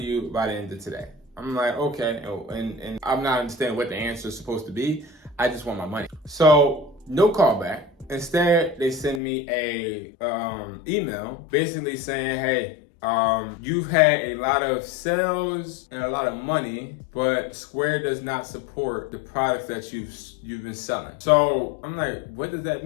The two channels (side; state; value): right; drops out; at 9.2 s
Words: by the end of today. I'm like, okay, and I'm not understanding what the answer is supposed to be. I just want my money. So no callback. Instead, they send me a email basically saying, hey, you've had a lot of sales and a lot of money, but Square does not support the products that you've been selling. So I'm like, what does that